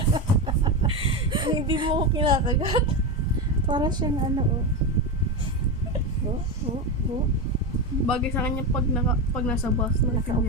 Hindi mo ako kinakagat. Para siyang ano, oh. Oh. Bagay sa kanya pag nasa bus.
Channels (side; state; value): both; normal; correlation 0.15